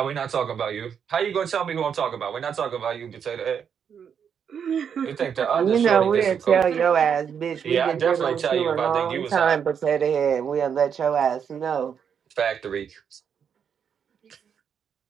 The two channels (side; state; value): left; quieter; 7.5 dB